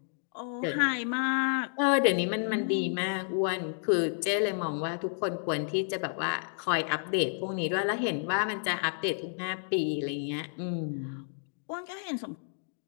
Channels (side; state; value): right; silent; digital silence